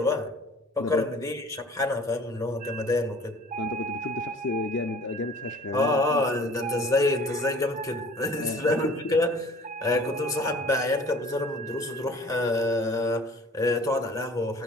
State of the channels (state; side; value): normal; both; correlation 0.49